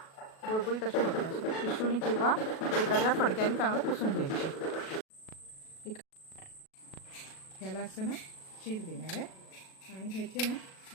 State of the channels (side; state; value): right; late; 37 ms